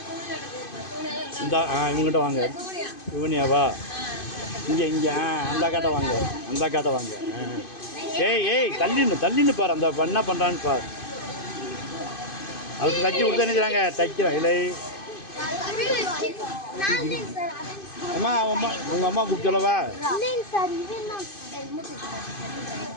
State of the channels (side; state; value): right; late; 2.5 ms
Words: இந்த இவங்ககிட்ட வாங்க. இவனியாவா? இங்கே அந்த காட்டை வாங்க. அந்த காட்டை வாங்க. ஏய் தள்ளின்னு பாரு. அந்த என்ன பண்ணுறான்னு பாரு. அதுக்கு தச்சு கொடுத்து என்ன செய்றாங்க? தைக்கிறேன் இல்லை. அம்மா உங்கள் அம்மா கூப்பிட்டு சொல்லவா?